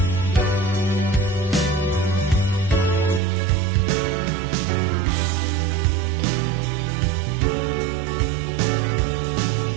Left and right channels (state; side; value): drops out; left; at 3.2 s